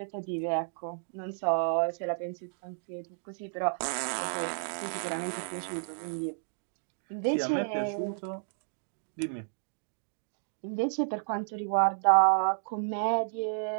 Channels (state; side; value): silent; left; digital silence